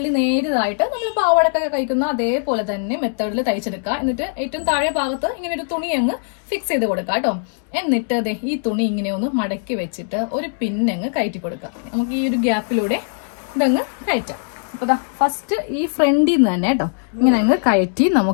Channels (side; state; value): right; silent; digital silence